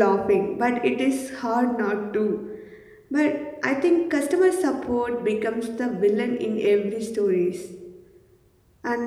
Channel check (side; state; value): both; identical; correlation 1.00